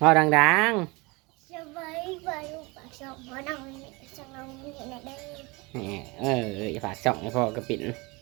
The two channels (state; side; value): quieter; left; 25.7 dB